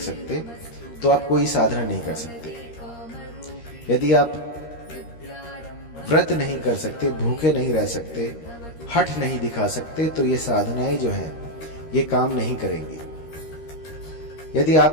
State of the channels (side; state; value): right; late; 13 ms